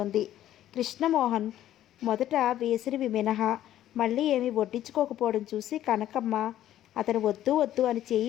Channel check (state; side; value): quieter; right; 12.4 dB